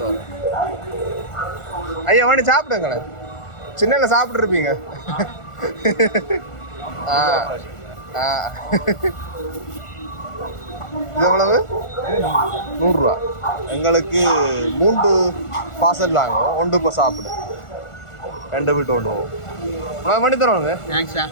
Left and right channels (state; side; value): late; right; 1.4 ms